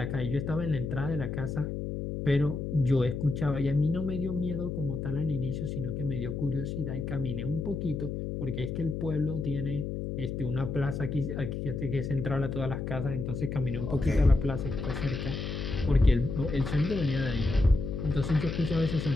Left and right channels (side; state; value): left; noise; hum, 4 dB below the sound